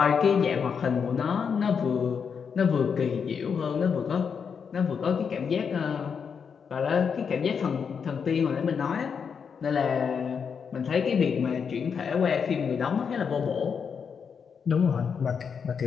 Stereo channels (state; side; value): quieter; right; 6.5 dB